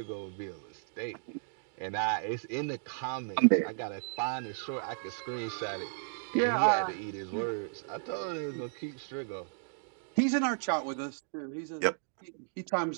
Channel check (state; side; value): silent; left; digital silence